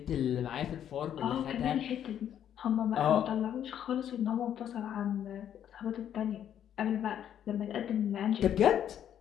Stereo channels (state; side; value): quieter; right; 9.9 dB